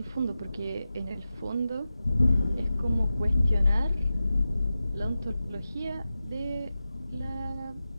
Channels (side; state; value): both; inverted; correlation -0.93